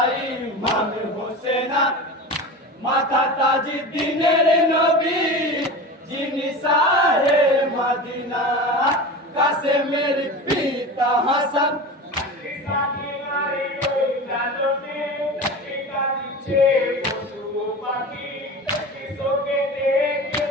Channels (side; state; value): both; normal; correlation 0.30